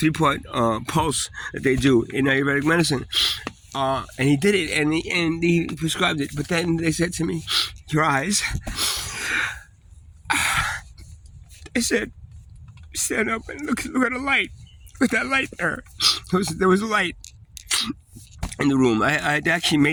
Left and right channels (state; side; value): identical; both; correlation 1.00